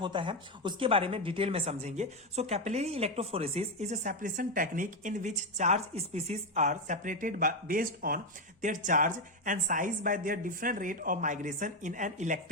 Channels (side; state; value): both; normal; correlation 0.07